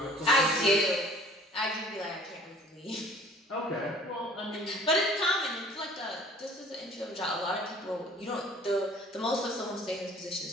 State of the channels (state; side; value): normal; both; correlation 0.51